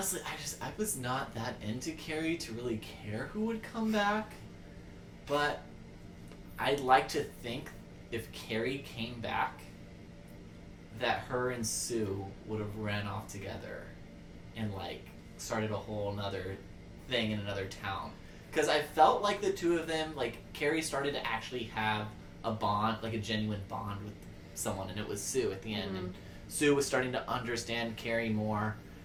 I was not that into Carrie to really care who would come back. But I'd like to think if Carrie came back that her and Sue would have ran off together and like started a whole nother thing in another town. Because I felt like the two of them, like Carrie started to actually have a bond, like a genuine bond with someone, and it was Sue at the end. And Sue was starting to understand Carrie more,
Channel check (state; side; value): identical; both; correlation 1.00